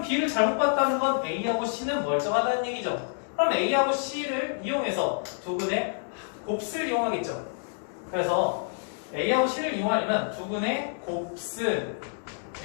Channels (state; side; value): silent; right; digital silence